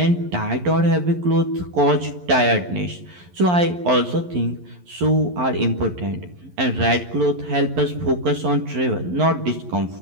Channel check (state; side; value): late; left; 11 ms